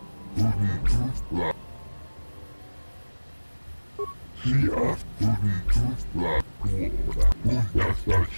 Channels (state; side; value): inverted; both; correlation -1.00